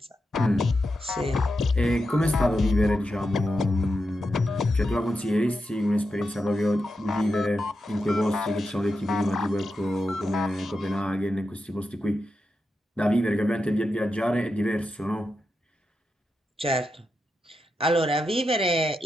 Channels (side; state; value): both; normal; correlation 0.87